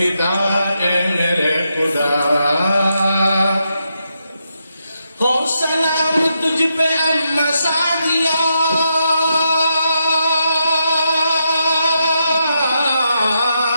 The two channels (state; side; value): inverted; both; correlation -0.82